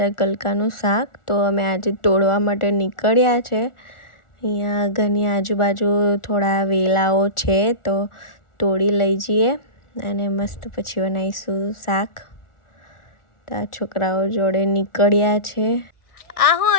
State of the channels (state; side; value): late; right; 1.4 ms